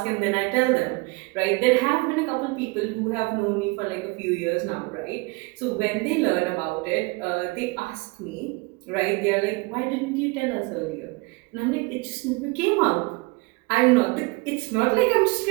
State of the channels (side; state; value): left; quieter; 26.3 dB